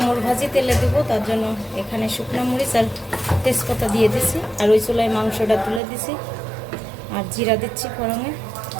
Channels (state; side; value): drops out; left; at 5.8 s